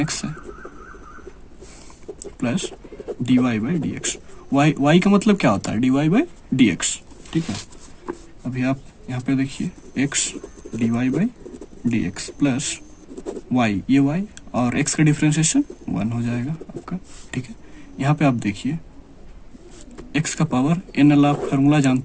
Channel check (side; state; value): both; identical; correlation 1.00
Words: है, plus dy by dx, y का मतलब क्या होता है, dy बाई dx। ठीक है, अभी आप यहाँ पे देखिए x dy by dx plus y, ये y और x का डिफ्रेंशिएशन 1 हो जाएगा आपका। ठीक है, यहाँ पे आप देखिए x का पावर n, आप फार्मूला